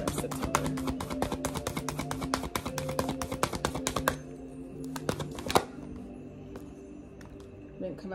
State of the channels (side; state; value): both; identical; correlation 1.00